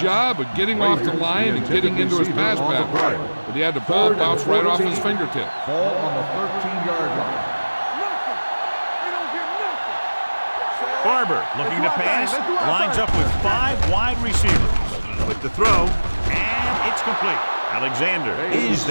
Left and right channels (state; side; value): inverted; both; correlation -1.00